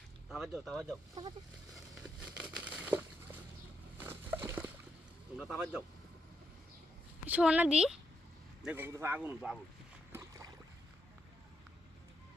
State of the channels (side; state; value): both; normal; correlation 0.80